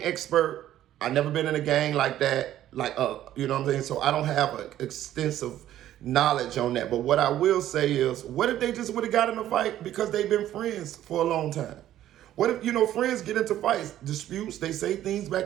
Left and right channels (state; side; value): quieter; left; 12.5 dB